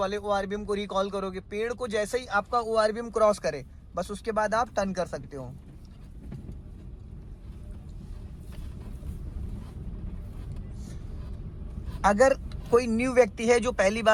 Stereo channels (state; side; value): identical; both; correlation 1.00